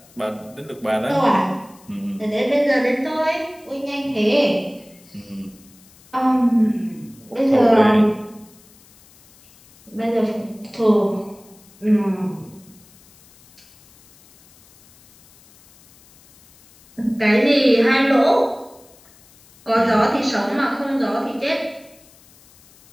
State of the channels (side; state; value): left; noise; hiss, 27 dB below the sound